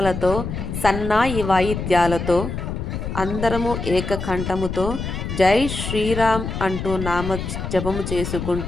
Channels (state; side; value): noise; left; rumble, 5 dB below the sound